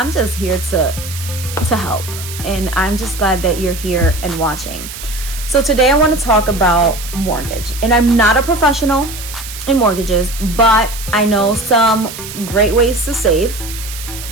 here to help. And I'm just glad that you're here and watching. So today I want to talk about mortgage. And I'm not a professional in mortgages, but I know some great ways to save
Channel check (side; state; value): right; noise; hiss, 11 dB below the sound